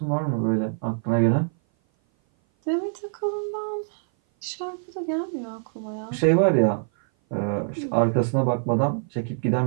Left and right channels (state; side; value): silent; left; 57 dB below the other